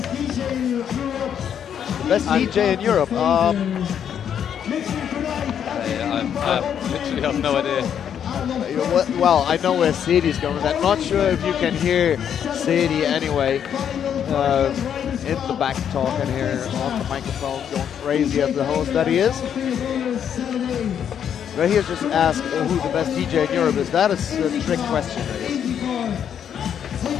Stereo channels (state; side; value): quieter; right; 8.7 dB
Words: Best DJ in Europe. I literally have no idea. Well, I know where Sadie's going with that. Not sure if you can hear Sadie anyway. In the back talking here on the microphone, going crazy as the host that he is. Right here, just ask who the best DJ in Europe is. That is a trick question, I guess.